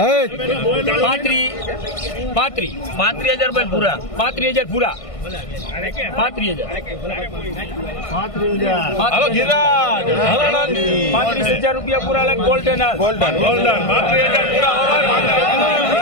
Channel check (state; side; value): late; right; 1.5 ms